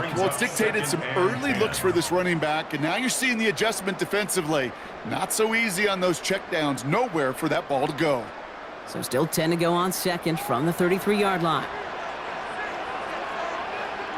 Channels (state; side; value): identical; both; correlation 1.00